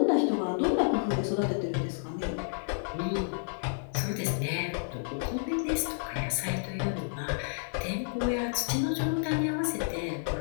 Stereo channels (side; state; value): right; silent; digital silence